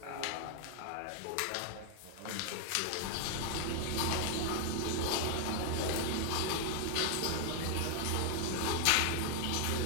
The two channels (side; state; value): both; different; correlation 0.00